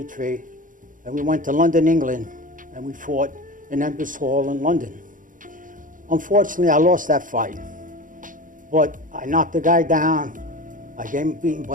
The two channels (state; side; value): late; left; 0.39 ms